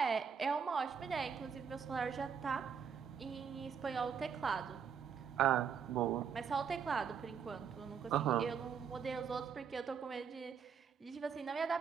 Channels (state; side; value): quieter; left; 6.9 dB